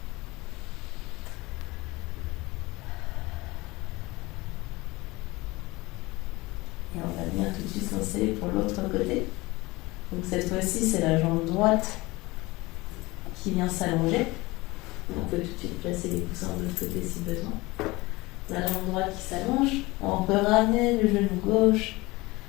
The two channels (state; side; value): quieter; right; 21.8 dB